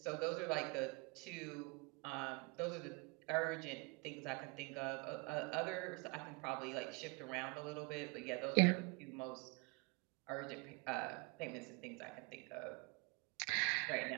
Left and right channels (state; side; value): quieter; left; 29.0 dB